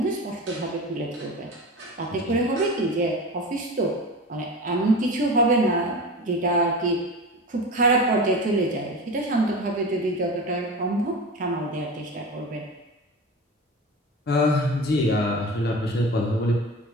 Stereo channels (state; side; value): normal; both; correlation 0.30